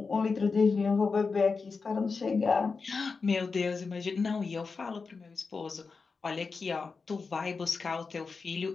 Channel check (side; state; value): right; quieter; 4.7 dB